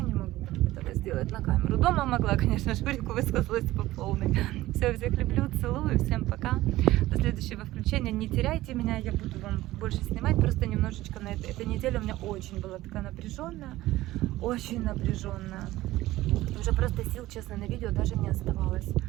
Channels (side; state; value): left; quieter; 16.6 dB